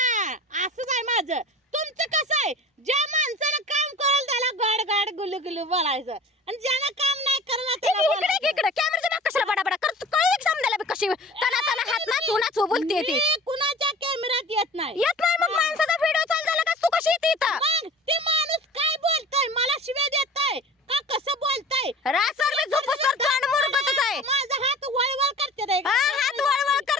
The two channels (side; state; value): both; normal; correlation 0.42